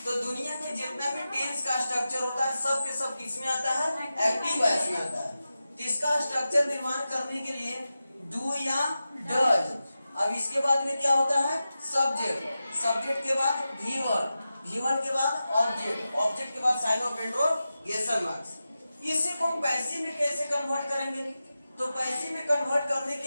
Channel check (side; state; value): both; inverted; correlation -0.92